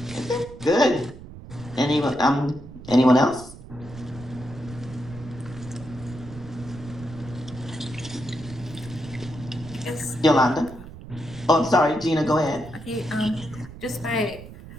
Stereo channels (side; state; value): right; noise; rumble, 15 dB below the sound